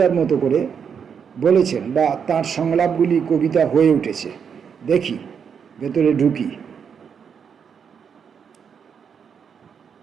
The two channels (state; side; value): quieter; left; 7.0 dB